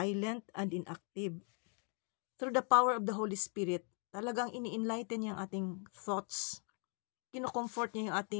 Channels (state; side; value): quieter; right; 37.8 dB